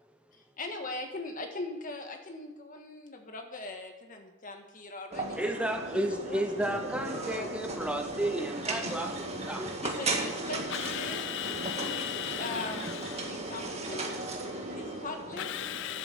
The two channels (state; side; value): normal; both; correlation 0.34